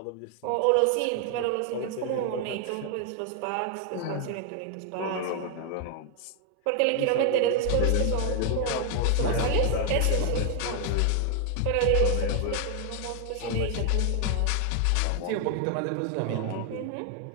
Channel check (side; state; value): both; different; correlation 0.00